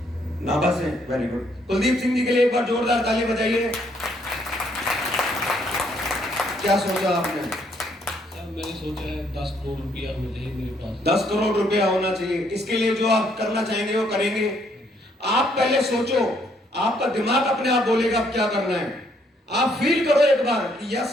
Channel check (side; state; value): both; normal; correlation 0.69